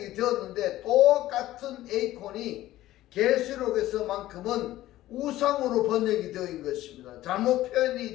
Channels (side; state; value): right; quieter; 15.1 dB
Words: 되었는데 똑같은 에이콘이 계시록에서만큼은 우상으로 번역이 되어있는 것입니다. 잘못 표현이